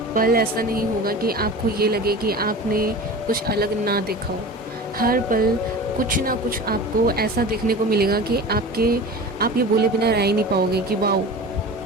पल ऐसा नहीं होगा कि आपको ये लगे कि आपने कुछ अलग ना देखा हो। हर पल कुछ ना कुछ आपको ऐसा देखने को मिलेगा कि आप ये बोले बिना रह ही नहीं पाओगे कि वाओ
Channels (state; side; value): normal; both; correlation 0.35